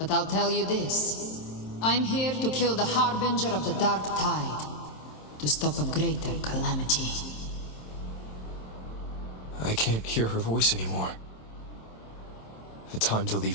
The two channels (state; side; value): late; right; 27 ms